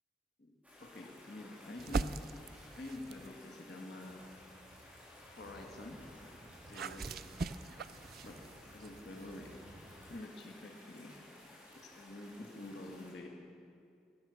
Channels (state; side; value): normal; both; correlation 0.72